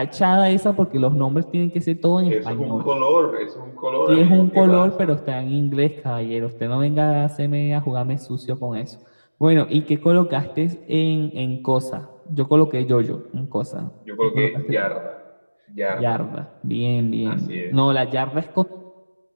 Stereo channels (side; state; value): both; inverted; correlation -1.00